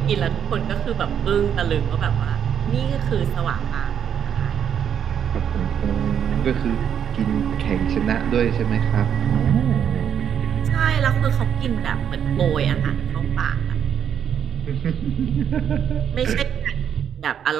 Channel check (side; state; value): left; quieter; 8.6 dB